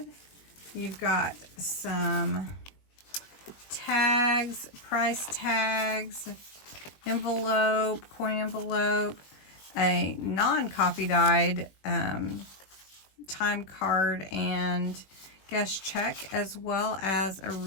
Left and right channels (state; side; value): late; right; 20 ms